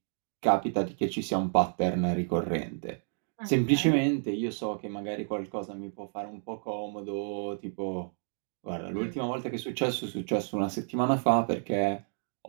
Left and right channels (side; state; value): left; silent; digital silence